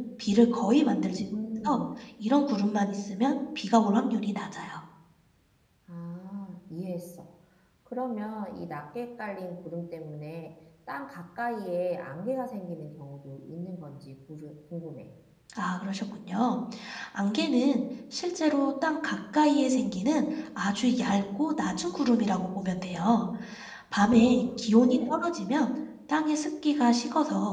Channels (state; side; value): identical; both; correlation 1.00